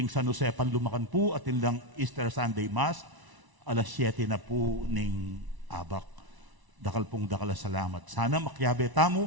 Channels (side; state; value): left; late; 1.0 ms